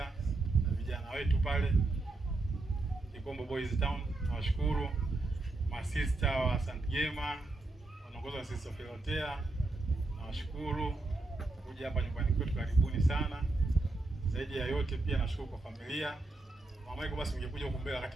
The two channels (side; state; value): left; quieter; 3.1 dB